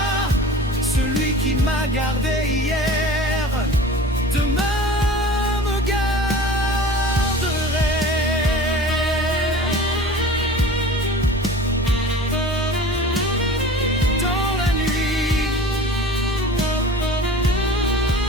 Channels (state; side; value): normal; both; correlation 0.40